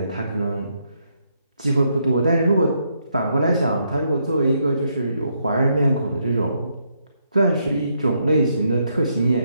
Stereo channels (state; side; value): inverted; both; correlation -0.76